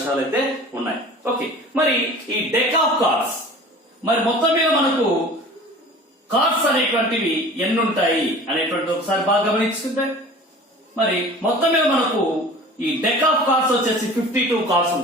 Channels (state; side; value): normal; both; correlation 0.42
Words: అయితే ఉన్నాయి. ఓకే, మరి ఈ డెక్ ఆఫ్ కార్డ్స్ మరి మొత్తం మీద మనకు కార్డ్స్ అనేటువంటివి ఎన్ని ఉంటాయి అనేటువంటి ఒకసారి బాగా గమనించుకుంటే, మరి మొత్తం మీద మనకు ఈ డెక్ ఆఫ్ కార్డ్స్ వచ్చేసి 52 కార్డ్స్